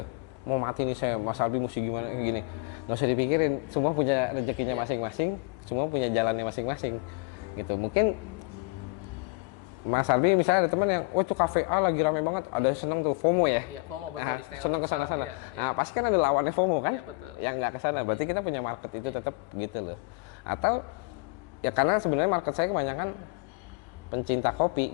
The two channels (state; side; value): quieter; right; 28.5 dB